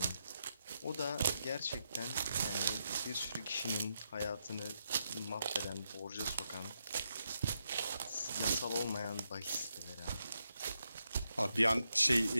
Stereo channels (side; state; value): both; inverted; correlation -0.83